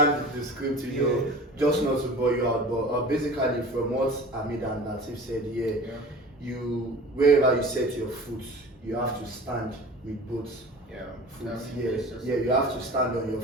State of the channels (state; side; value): normal; both; correlation 0.39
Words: the script, just not to bore you out. But basically, from what Hamid and Lateef said, you wherever you set your foot, you have to stand with both foot. You have to stand on your